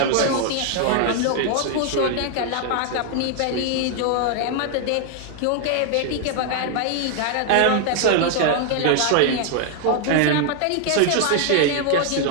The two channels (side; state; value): both; different; correlation 0.00